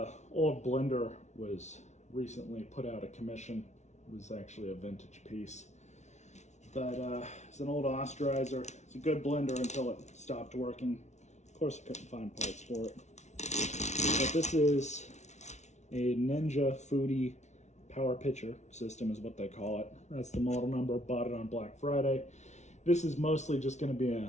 old blender was recently put out of commission. It was actually a vintage piece, but it's an old osterizer. It's a good blender until it stopped working. Of course, I couldn't find parts for it. But this is a Ninja Foodi power pitcher system is what they call it. That's the model number. Bought it on Black Friday. This is mostly just going to be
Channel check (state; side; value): late; right; 0.33 ms